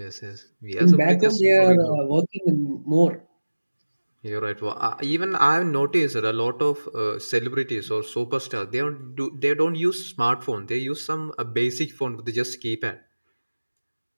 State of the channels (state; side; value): inverted; both; correlation -1.00